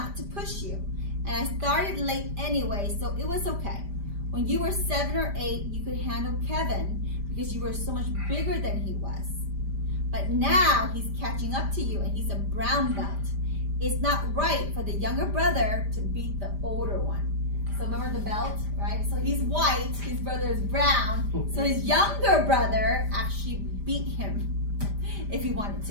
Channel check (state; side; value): late; left; 5.0 ms